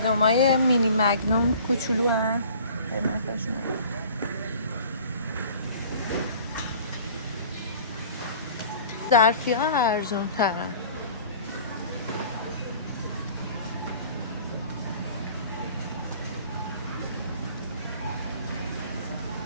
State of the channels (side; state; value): both; inverted; correlation -0.47